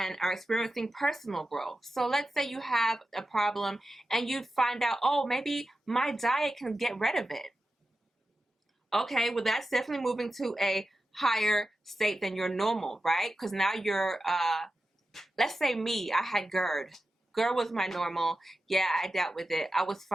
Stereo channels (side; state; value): both; normal; correlation 0.92